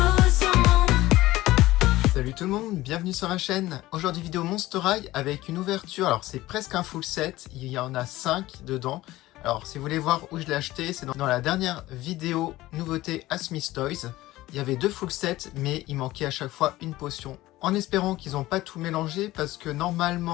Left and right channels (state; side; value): quieter; right; 17.2 dB